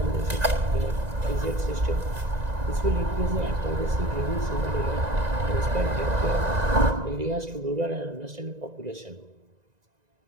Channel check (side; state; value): left; late; 1.9 ms